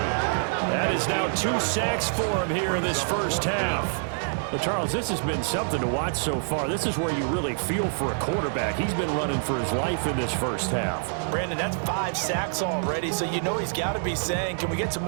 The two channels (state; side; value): silent; left; digital silence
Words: That is now 2 sacks for him here in this 1st half. Well, Charles, this has been something to watch so far. This is where you really feel for a quarterback. He's been running for his life in this 1st half. Brandon, that's 5 sacks already, so you know he's got to be saying, can we get some